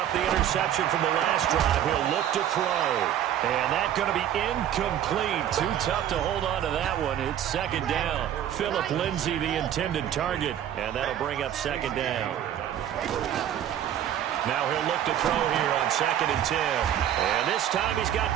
the interception from the last drive. He'll look to throw. And that's going to be incomplete. Too tough to hold on to that one. It's 2nd down. Phillip Lindsay, the intended target. And that'll bring up 2nd down. Now he'll look to throw here on 2nd and 10. And this time he's got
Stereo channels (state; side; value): quieter; left; 10.7 dB